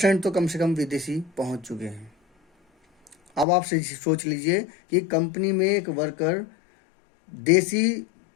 तो कम से कम विदेशी पहुंच चुके हैं। अब आप सोच लीजिए कि कंपनी में एक वर्कर देसी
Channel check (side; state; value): right; drops out; at 3.5 s